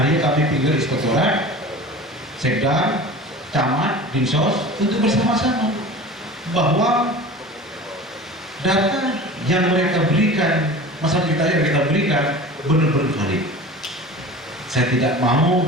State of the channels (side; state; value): both; normal; correlation 0.37